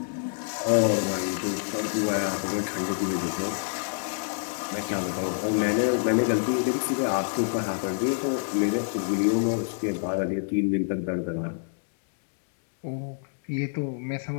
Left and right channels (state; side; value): silent; right; digital silence